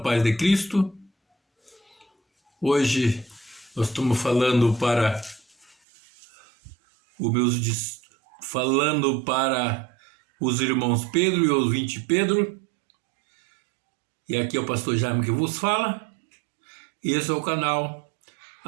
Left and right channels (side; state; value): left; drops out; at 5.8 s